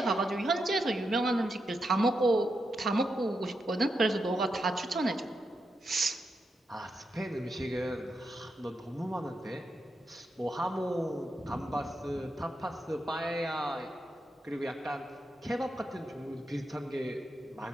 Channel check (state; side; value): normal; both; correlation 0.85